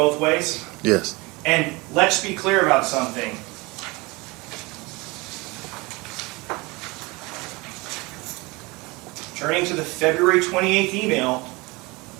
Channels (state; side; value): quieter; left; 24.7 dB